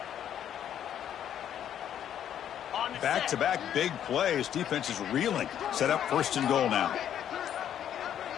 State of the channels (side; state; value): right; quieter; 10.0 dB